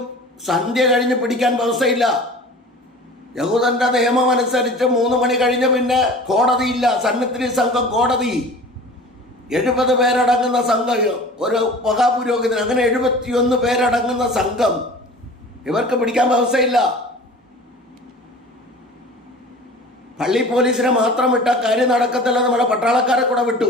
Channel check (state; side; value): normal; both; correlation 0.41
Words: സന്ധ്യ കഴിഞ്ഞ് പിടിക്കാൻ വ്യവസ്ഥയില്ല. യഹൂദന്റെ നിയമം അനുസരിച്ച് 3 മണി കഴിഞ്ഞ് പിന്നെ കോടതിയില്ല. സന്നിധി സംഘം കോടതി 70 പേരടങ്ങുന്ന സംഘം, ഒരു മഹാപുരോഹിതൻ, അങ്ങനെ 71 പേരടങ്ങുന്ന സംഘം. ഇവർക്ക് പിടിക്കാൻ വ്യവസ്ഥയില്ല. പള്ളി പോലീസിനെ മാത്രം വിട്ട കാര്യം നടക്കത്തില്ല. നമ്മുടെ പട്ടാളക്കാരെ കൂടെ വിട്ടു.